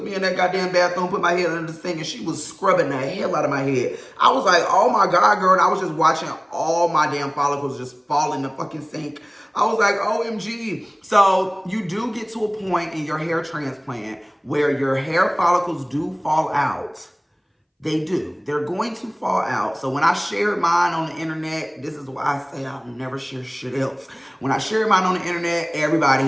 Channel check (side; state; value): both; identical; correlation 1.00